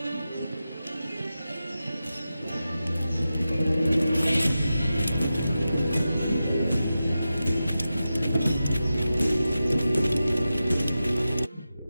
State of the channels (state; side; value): inverted; both; correlation -0.92